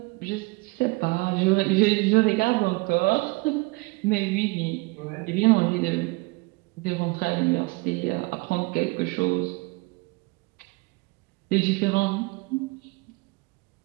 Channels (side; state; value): left; quieter; 24.9 dB